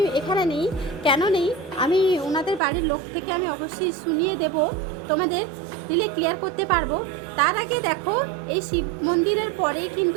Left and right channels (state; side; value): drops out; left; at 2.6 s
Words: এখানে নেই। কেন নেই আমি ওনাদের বাড়ির লোক থেকে আমি অবশ্যই শুনিয়ে দেব, তোমাদের দিলে ক্লিয়ার করতে পারবো। তার আগে দেখো এই শিব মন্দিরের পরেই